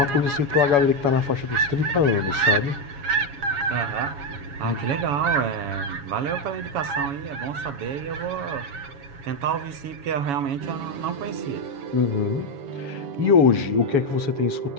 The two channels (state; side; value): late; left; 7.1 ms